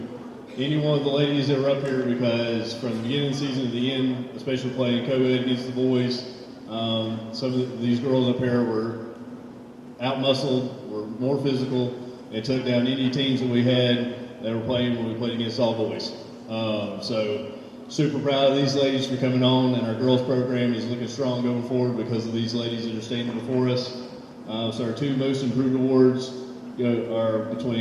any one of the ladies that were up here because from the beginning of the season to the end, especially playing co-ed against the boys, some of these girls up here were out-muscled, were more physical, and took down any teams that we had that were playing when we played against all boys. So super proud of these ladies for coming on, and our girls program is looking strong going forward because of these ladies that are standing before us. So our 2 most improved awards are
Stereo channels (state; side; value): identical; both; correlation 1.00